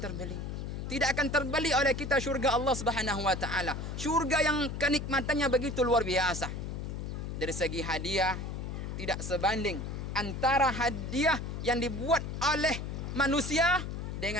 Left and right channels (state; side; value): noise; left; hum, 5 dB below the sound